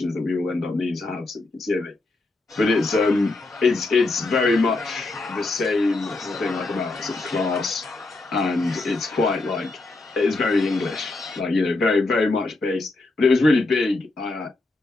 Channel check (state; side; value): quieter; right; 3.2 dB